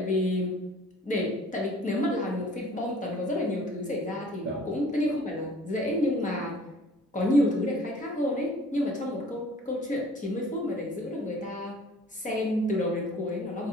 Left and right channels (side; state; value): both; normal; correlation 0.51